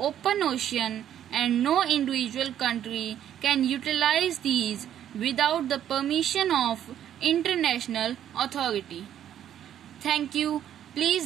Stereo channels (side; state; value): left; quieter; 10.5 dB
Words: ocean and no individual country can utilize these without the permission of international authority. Thank you.